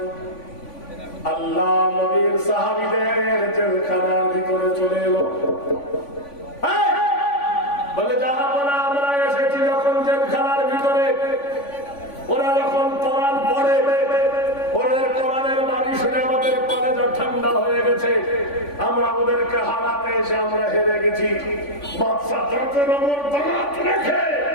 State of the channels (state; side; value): late; right; 3.5 ms